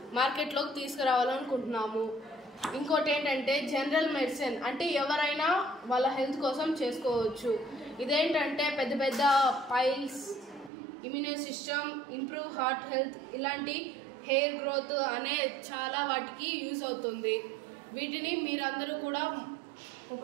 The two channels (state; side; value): drops out; left; at 10.7 s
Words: మార్కెట్లోకి తీసుకురావాలనుకుంటున్నాము. ఇంకోటి ఏంటంటే జనరల్ మెడిసిన్ అంటే ఎవరైనా వాళ్ళ హెల్త్ కోసం చేసుకోవచ్చు. ఇదేంటంటే పెద్ద piles, immune system, improve heart health, ఇలాంటి హెయిర్ గ్రోత్ అనే చాలా వాటికి యూజ్ అవుతుంది. వీటిని మీరందరూ కూడా